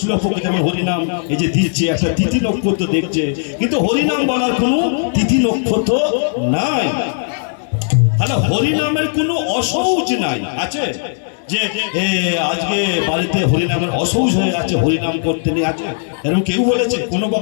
পক্ষ। যেমন হরিনাম এই যে দিচ্ছে একটা তিথি নক্ষত্র দেখছে, কিন্তু হরিনাম বলার কোনো তিথি নক্ষত্র নাই। তাহলে হরিনামের কোনো অসৌচ নাই, আছে যে আজকে বাড়িতে হরিনামের অসৌচ হয়ে আছে, হরিনাম করতে নেই, আছে এরকম কেউ বলেছে? কোনো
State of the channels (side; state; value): right; silent; digital silence